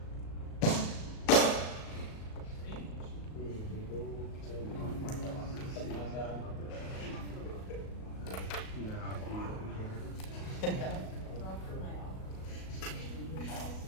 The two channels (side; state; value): right; late; 37 ms